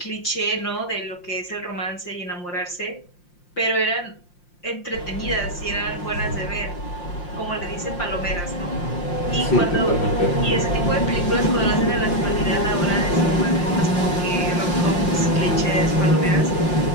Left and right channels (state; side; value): late; right; 5.7 ms